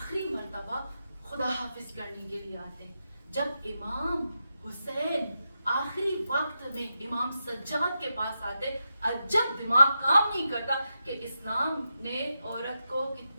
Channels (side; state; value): both; inverted; correlation -0.87